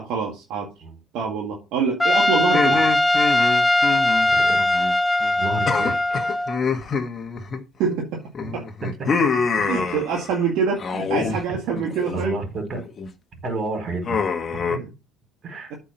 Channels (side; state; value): both; normal; correlation 0.75